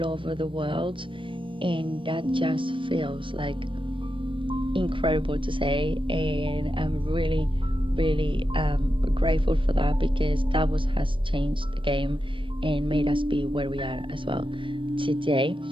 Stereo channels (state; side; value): late; left; 0.25 ms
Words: over the world, and that just feels like incredible to say. And I'm really grateful for that, because that has changed the game and made us be where we are as well today.